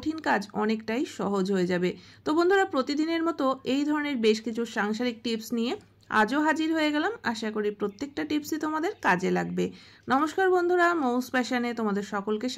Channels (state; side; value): identical; both; correlation 1.00